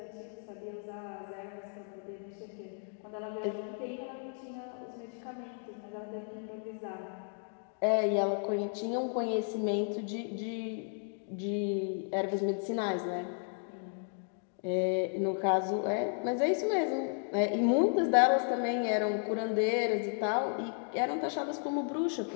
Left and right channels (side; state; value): right; silent; 55 dB below the other